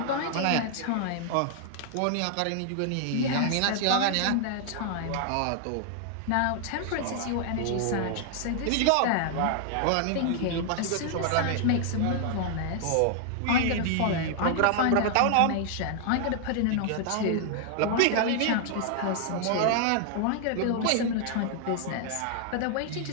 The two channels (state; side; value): different; both; correlation 0.00